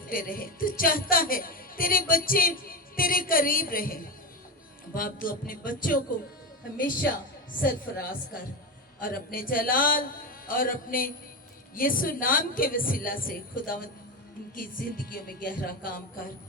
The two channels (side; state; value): both; normal; correlation 0.18